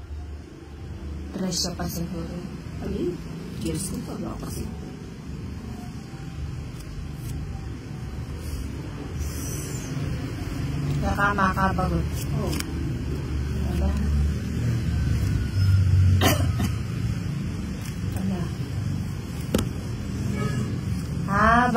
Siya pa siguro. Ay, years ko pa ba kasi. Nakamakabagot. Oo. Wala. Wala.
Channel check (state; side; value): identical; both; correlation 1.00